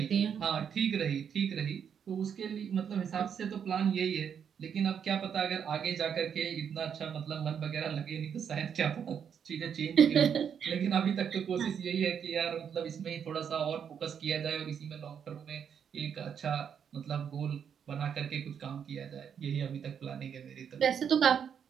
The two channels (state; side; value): quieter; left; 7.8 dB